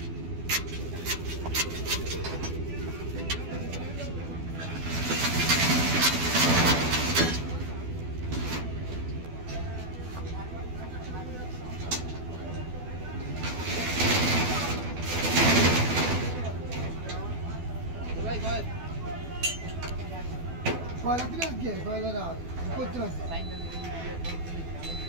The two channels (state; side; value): late; left; 12 ms